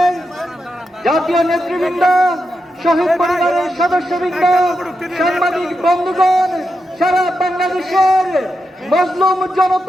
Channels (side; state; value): both; normal; correlation 0.87